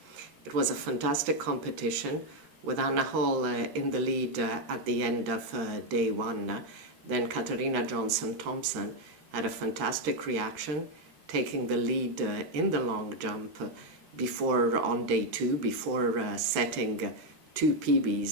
It was a fantastic competition with Anna Hall in the lead at the end of day one. Then Katarina Johnson-Thompson had a fantastic reaction, taking the lead in the long jump on day two, before setting two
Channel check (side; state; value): left; late; 13 ms